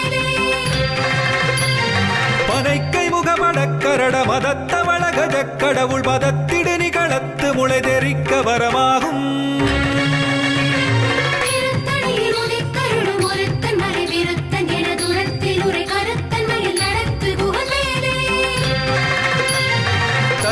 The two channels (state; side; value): identical; both; correlation 1.00